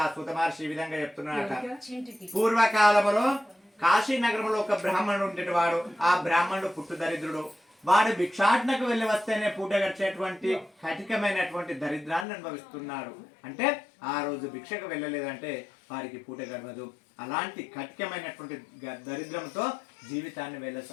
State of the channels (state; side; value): drops out; right; at 12.2 s